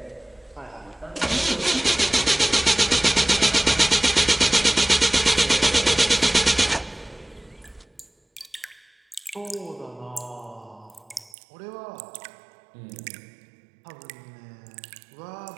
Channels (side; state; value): left; drops out; at 11.3 s